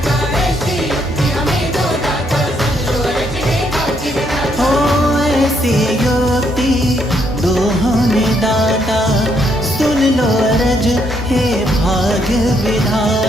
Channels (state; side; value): normal; both; correlation 0.73